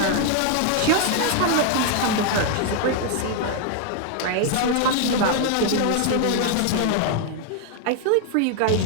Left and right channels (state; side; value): different; both; correlation 0.00